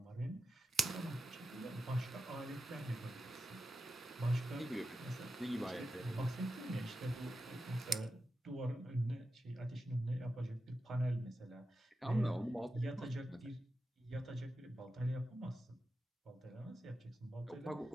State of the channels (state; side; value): normal; both; correlation 0.89